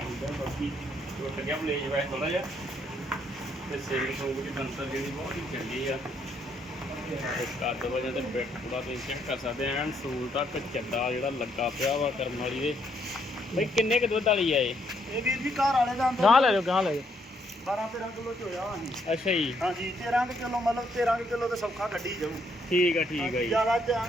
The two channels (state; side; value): normal; both; correlation 0.72